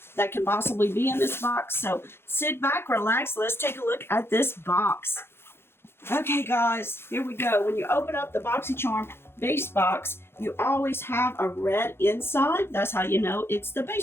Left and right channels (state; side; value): late; right; 0.11 ms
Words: that can possibly be in this box. So sit back, relax. Let's take a look at this box. Okay, guys, here we go. When you open up the Boxycharm base box, you always have a red inside. That's how you know it's the